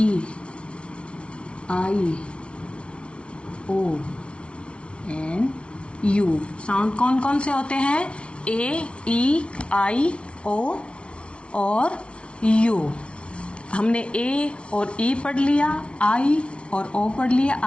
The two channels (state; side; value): late; right; 0.059 ms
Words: I, O and U. Sound कौन कौन से होते हैं? ए, ई, आई, ओ और you. हमने ए और ई पढ़ लिया, आई और ओ पढ़ लिया.